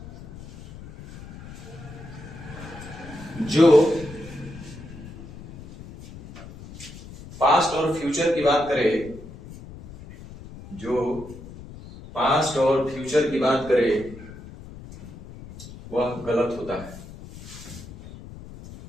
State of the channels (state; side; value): noise; left; rumble, 15 dB below the sound